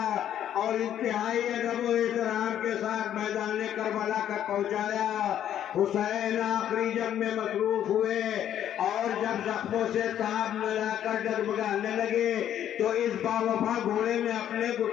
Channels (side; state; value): right; quieter; 10.6 dB